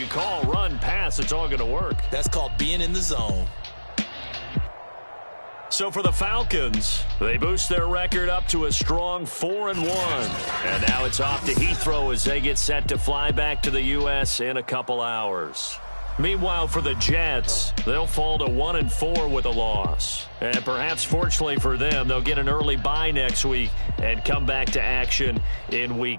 call, run, pass, it's all going to work. That's called being in the zone. So for the Falcons, they boost their record up to a strong 4-1. And now it's off to Heathrow as they get set to fly back to the U.S. in a couple hours. Meanwhile, for the Jets, they'll fall to 1-4 with a loss. And perhaps fortunately for them, they'll get an early bye next week and come back to action in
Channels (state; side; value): inverted; both; correlation -1.00